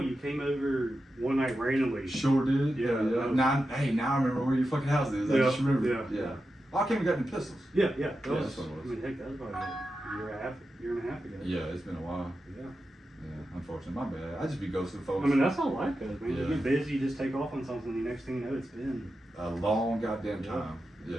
came over one night randomly. Sure did. Yeah. Now I remember where your fucking house is. I just remember. Yeah. Oh, I came and got them pistols. Yeah. That Yeah, was, that's what it was. I mean, heck, that was about a year and a half ago. Yeah, it's been a while. Yeah. Yeah, unfortunately, my bad. I just be ghosting folks. I mean, that's how life goes, man. Yeah. You get busy, you just take off on something, and the next thing you know, it's been a long goddamn time. Yeah.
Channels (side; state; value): both; normal; correlation 0.90